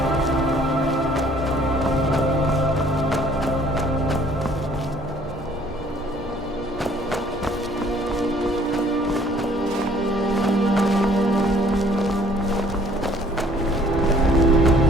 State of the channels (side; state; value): both; normal; correlation 0.58